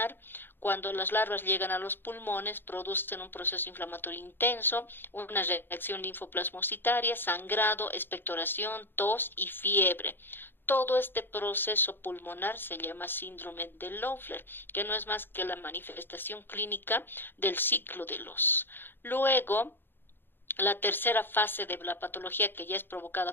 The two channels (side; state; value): right; late; 0.10 ms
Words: Cuando las larvas llegan a los pulmones, producen un proceso inflamatorio intenso, una reacción linfoplasmocitaria, sangrado, expectoración, tos y fiebre. Todo este proceso pulmonar se llama síndrome de Loeffler, que no es más que la manifestación clínica del ciclo de Los. Luego, la tercera fase de la patología, que ya es